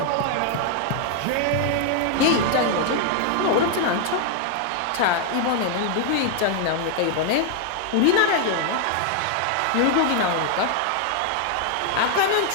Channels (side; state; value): both; different; correlation 0.00